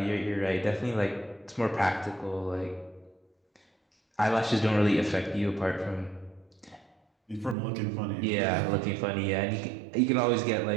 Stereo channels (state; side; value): drops out; left; at 7.6 s